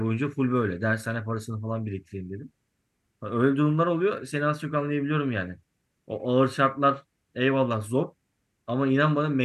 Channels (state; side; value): identical; both; correlation 1.00